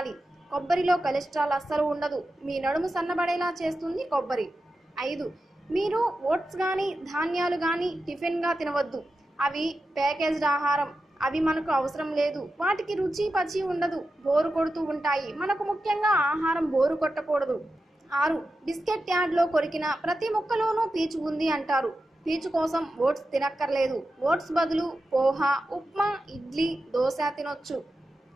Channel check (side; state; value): both; normal; correlation 0.91